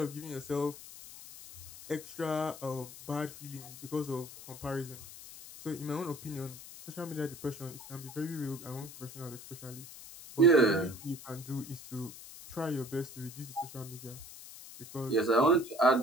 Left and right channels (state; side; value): noise; left; hiss, 15 dB below the sound